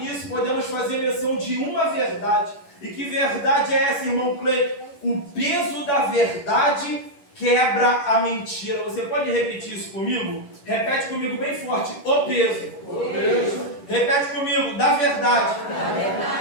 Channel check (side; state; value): right; late; 11 ms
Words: podemos fazer menção de uma verdade. E que verdade é essa, irmão Cleiton? O peso da verdade quebra a mentira. Você pode repetir isso comigo? Repete comigo bem forte. O peso. O peso. Repete comigo. Da verdade. Da